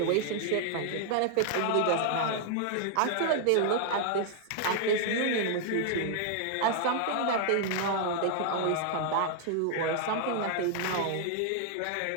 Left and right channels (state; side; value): different; both; correlation -0.01